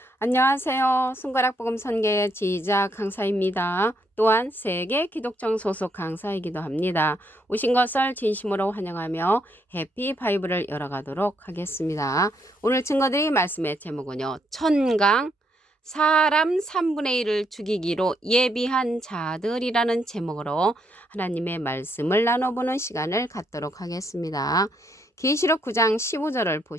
안녕하세요. 손가락복음 선교의 지휘자 강사입니다. 또한 세계 기독정 소속 강사이기도 합니다. 오신 것을 진심으로 환영하며 해피 바이블을 열어가도록 하겠습니다. 오늘 증거드릴 말씀의 제목은요. 천강 사람 3분의 1을 죽이기로 예비한 자들이라는 제목으로 하나님의 말씀을 나눠보는 시간을 갖도록 하겠습니다. 계시록 9장 15절을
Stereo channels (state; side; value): normal; both; correlation 0.74